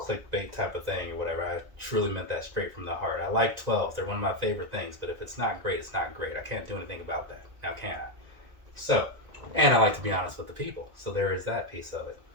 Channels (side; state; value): left; late; 1.9 ms